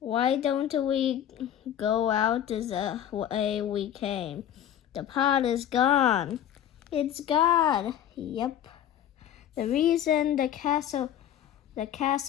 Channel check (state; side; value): quieter; right; 10.7 dB